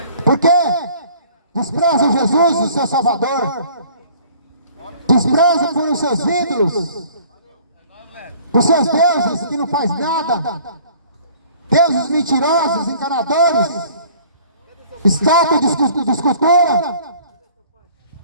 Por quê? Desprezam Jesus, o seu Salvador. Desprezam por os seus ídolos, por seus deuses que não faz nada. Deuses mentirosos, enganadores, estátua de escultura.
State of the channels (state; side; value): inverted; both; correlation -0.52